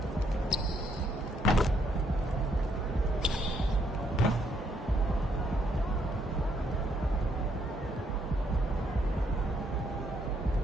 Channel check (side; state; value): both; normal; correlation 0.72